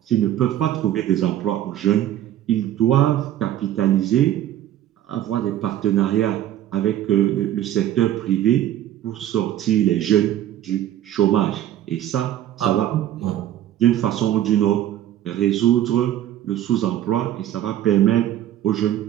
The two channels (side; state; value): left; quieter; 12.1 dB